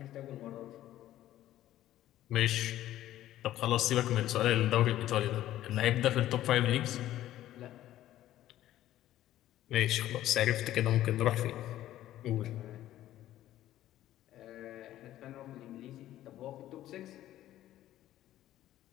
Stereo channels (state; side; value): quieter; right; 13.5 dB